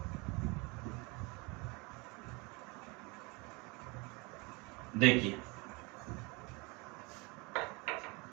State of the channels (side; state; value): left; quieter; 27.6 dB